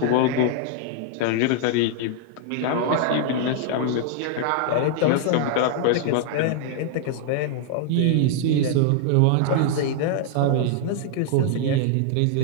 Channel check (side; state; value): both; different; correlation 0.00